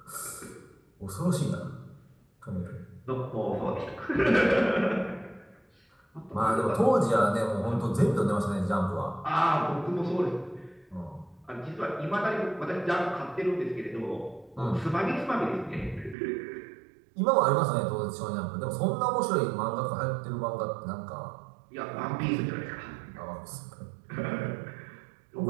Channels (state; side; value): drops out; left; at 16.2 s